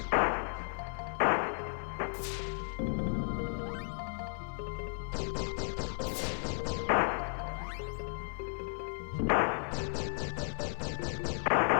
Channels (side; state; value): right; silent; digital silence